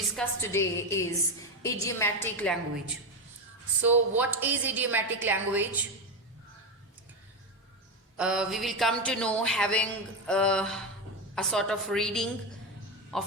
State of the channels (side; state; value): both; normal; correlation 0.14